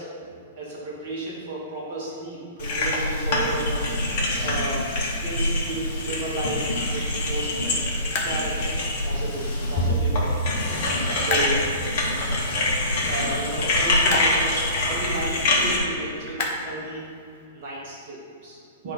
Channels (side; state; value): both; inverted; correlation -0.40